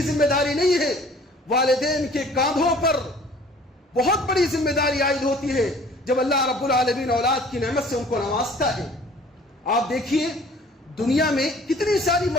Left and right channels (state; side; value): normal; both; correlation 0.51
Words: ذمہ داری نہیں ہے، والدین کے کاندھوں پر بہت بڑی ذمہ داری عائد ہوتی ہے جب اللہ رب العالمین اولاد کی نعمت سے ان کو نوازتا ہے۔ آپ دیکھیے دنیا میں کتنی ساری